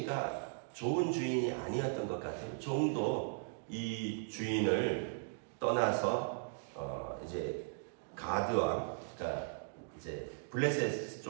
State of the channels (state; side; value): silent; left; digital silence